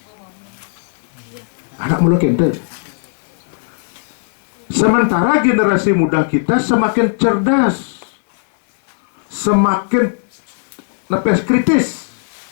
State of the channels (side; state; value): right; silent; digital silence